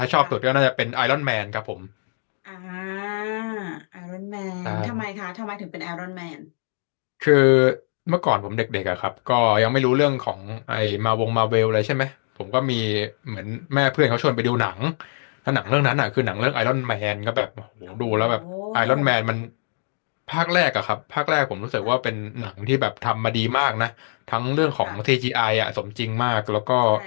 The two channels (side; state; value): right; silent; digital silence